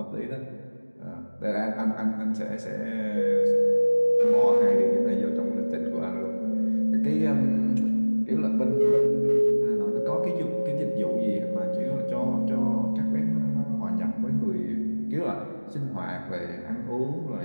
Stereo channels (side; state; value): both; inverted; correlation -1.00